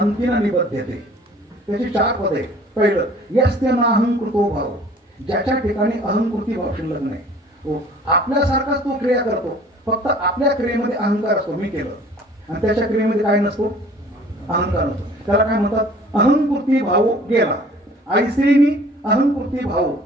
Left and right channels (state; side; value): normal; both; correlation 0.51